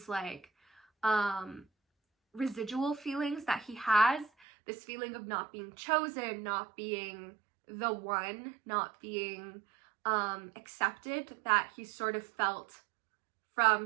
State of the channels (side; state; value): left; drops out; at 4.3 s